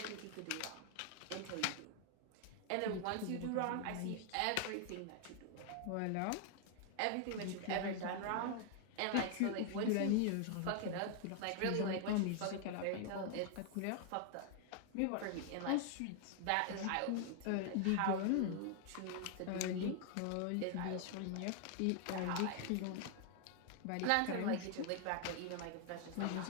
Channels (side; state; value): both; different; correlation 0.00